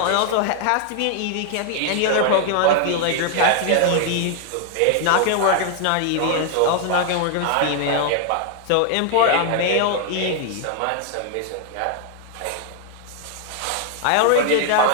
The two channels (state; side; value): different; both; correlation 0.00